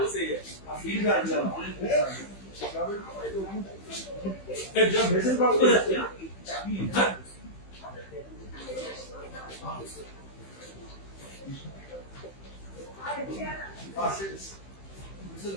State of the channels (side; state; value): right; late; 15 ms